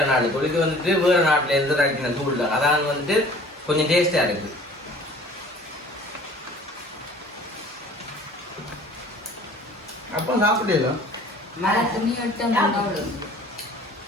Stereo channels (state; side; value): normal; both; correlation 0.49